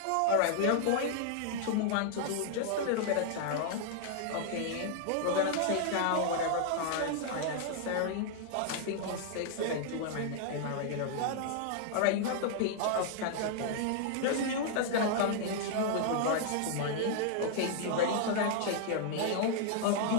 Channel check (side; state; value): both; different; correlation -0.01